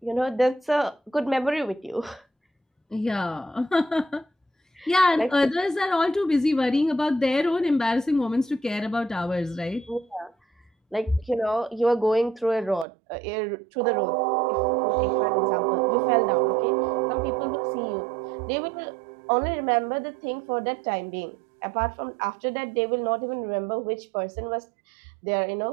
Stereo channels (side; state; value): left; drops out; at 12.9 s